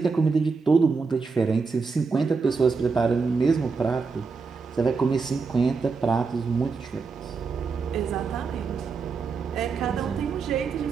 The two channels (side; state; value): left; quieter; 4.7 dB